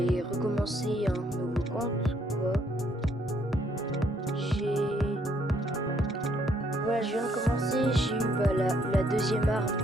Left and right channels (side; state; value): both; normal; correlation 0.69